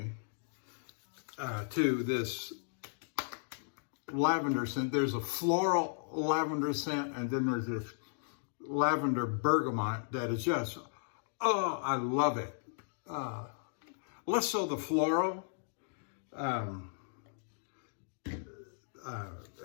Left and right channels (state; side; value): silent; right; digital silence